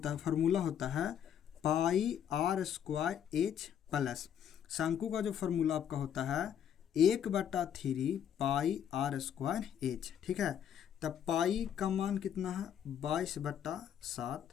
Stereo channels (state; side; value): quieter; right; 9.2 dB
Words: है फार्मूला होता है पाई r स्क्वायर एच प्लस शंकु का जो फार्मूला आपका होता है 1/3 पाई r स्क्वायर एच, ठीक है। तब पाई का मान कितना है